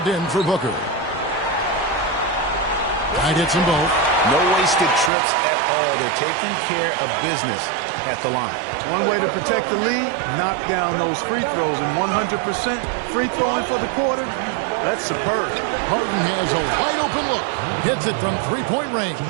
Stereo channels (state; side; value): drops out; left; at 5.1 s